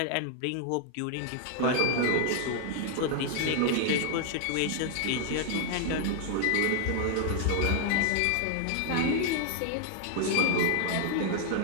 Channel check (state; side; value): different; both; correlation 0.00